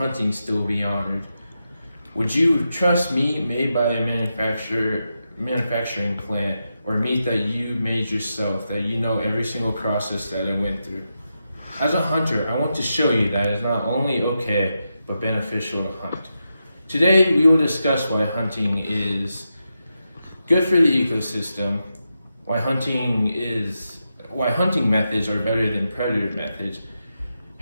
still be honored? Would you trust meat made by a manufacturing plant, or meat that you made yourself, that you know every single process that it went through? As a hunter, I want to show you that it's not only okay, but beneficial to hunt. Today, we will discuss why hunting is good for the ecosystem, why hunting methods are better than predator methods,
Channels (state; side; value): inverted; both; correlation -0.87